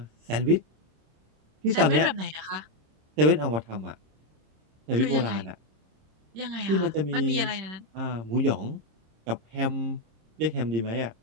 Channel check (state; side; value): late; left; 26 ms